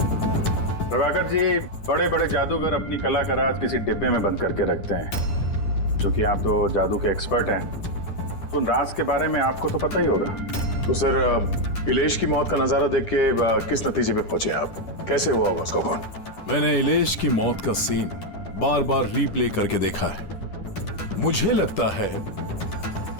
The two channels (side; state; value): right; late; 10 ms